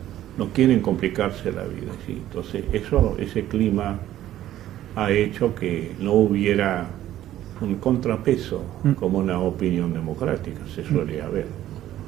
no quieren complicarse la vida. ¿Sí? Entonces, ese clima ha hecho que no hubiera un contrapeso como una opinión democrática se suele haber.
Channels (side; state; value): left; quieter; 13.0 dB